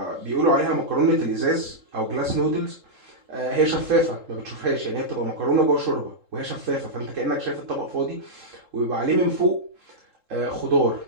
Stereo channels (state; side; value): late; left; 3.7 ms